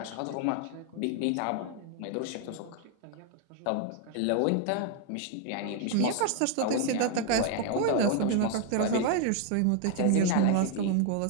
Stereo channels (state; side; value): different; both; correlation 0.00